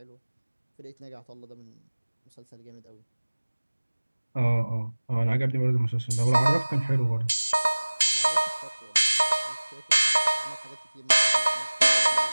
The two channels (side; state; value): both; inverted; correlation -1.00